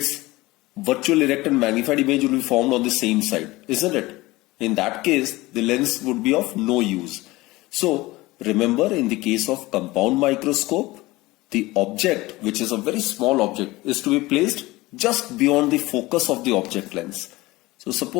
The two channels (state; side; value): quieter; right; 20.1 dB